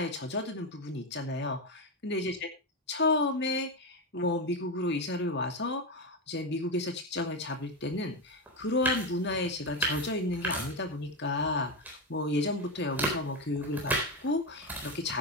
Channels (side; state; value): both; normal; correlation 0.12